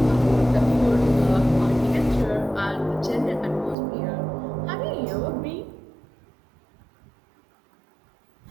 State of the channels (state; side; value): drops out; left; at 3.8 s